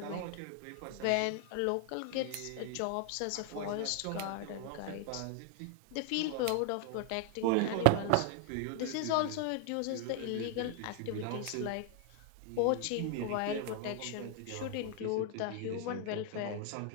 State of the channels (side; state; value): both; different; correlation 0.00